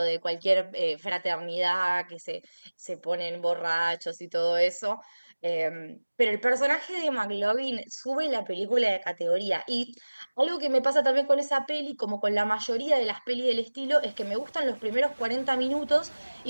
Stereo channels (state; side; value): inverted; both; correlation -1.00